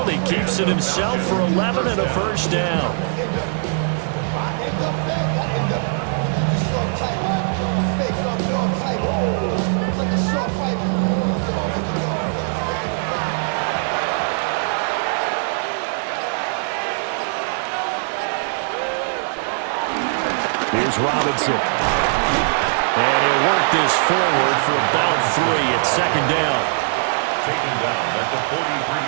He keeps it himself for 11 and a first down. Here's Robinson. And he'll work this forward for about 3 at second down. Taken down at the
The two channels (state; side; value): silent; left; 65 dB below the other